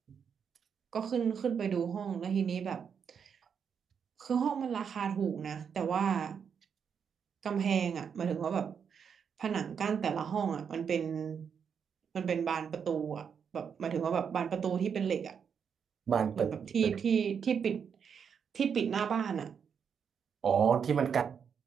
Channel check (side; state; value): left; quieter; 7.0 dB